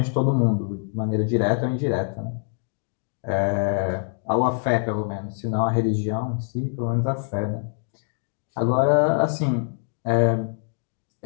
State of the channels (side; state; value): right; silent; 62 dB below the other